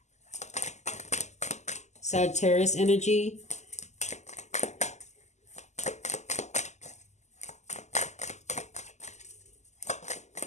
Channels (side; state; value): right; late; 0.33 ms